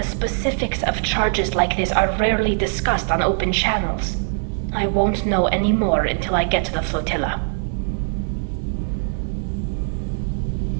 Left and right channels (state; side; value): silent; left; digital silence